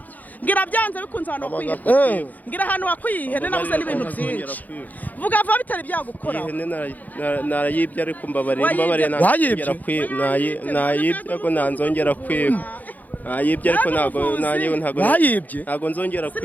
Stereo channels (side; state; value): right; late; 0.081 ms